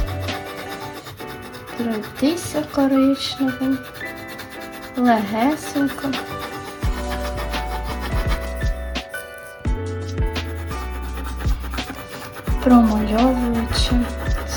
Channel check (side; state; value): both; identical; correlation 1.00